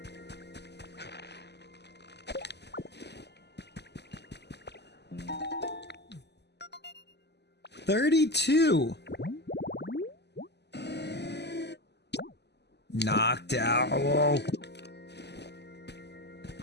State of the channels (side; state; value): right; late; 0.50 ms